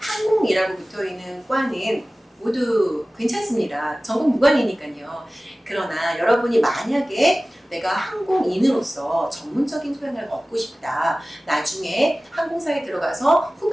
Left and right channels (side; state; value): both; normal; correlation 0.97